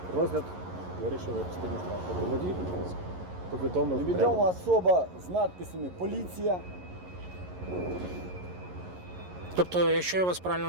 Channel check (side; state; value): left; late; 11 ms